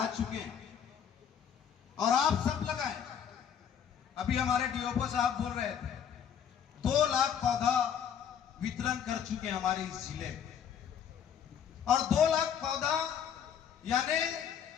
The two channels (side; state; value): right; quieter; 8.3 dB